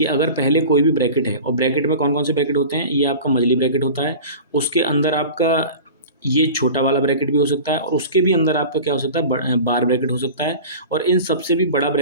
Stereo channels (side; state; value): both; inverted; correlation -0.36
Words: अगर पहले कोई भी ब्रैकेट है, और ब्रैकेट में कौन कौन से ब्रैकेट होते हैं, ये आपका मजली ब्रैकेट होता है, उसके अंदर आपका ये छोटा वाला ब्रैकेट भी हो सकता है, और उसके भी अंदर आपका क्या हो सकता है, बार ब्रैकेट हो सकता है, और इन सबसे भी बड़ा